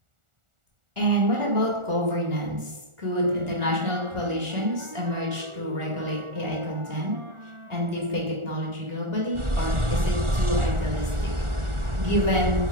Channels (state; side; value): late; left; 1.4 ms